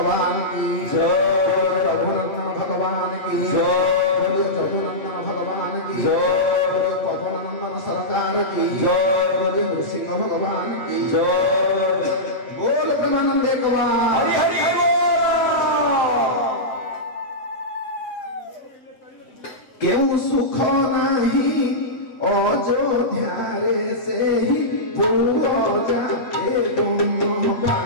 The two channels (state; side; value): late; right; 7.6 ms